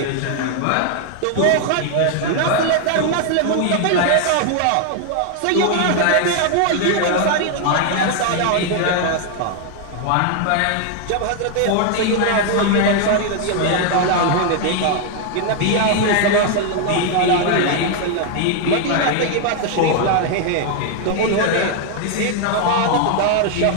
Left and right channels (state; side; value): different; both; correlation 0.00